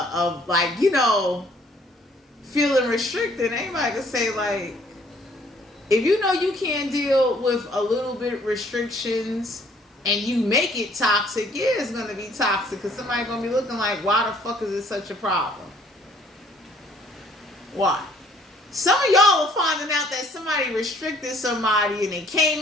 like, feeling restricted. Anybody can say like, if you can't deal with a little bit restrictions and you make it toxic, yeah, it's going to be toxic, because somebody's going to be looking like, why the fuck is it such a problem? Why? Some of y'all are finding out that somebody restricted somebody and they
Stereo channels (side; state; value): both; normal; correlation 0.61